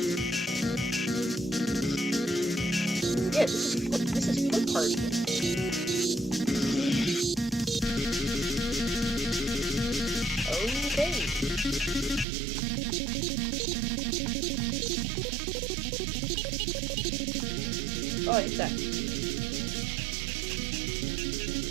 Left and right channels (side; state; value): left; drops out; at 12.2 s